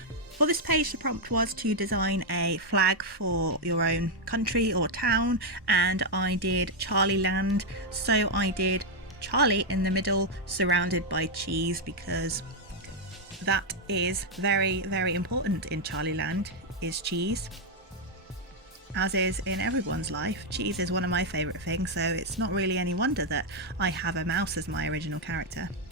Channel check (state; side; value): normal; both; correlation 0.00